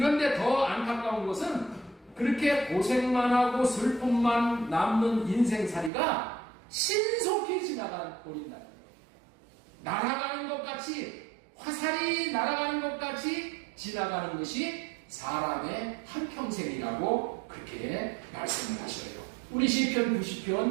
더 안타까운 것은 그렇게 고생만 하고 슬픔만 남는 인생살이가 신속히 지나가 버린다는 거예요. 날아가는 것 같이, 화살이 날아가는 것 같이 지나가는 것이 사람의 한평생이라고 그렇게 말씀을 하셔요. 우리 시편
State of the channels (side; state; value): left; drops out; at 5.9 s